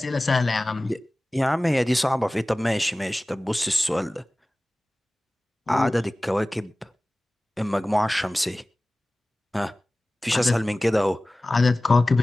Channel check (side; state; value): both; normal; correlation 0.98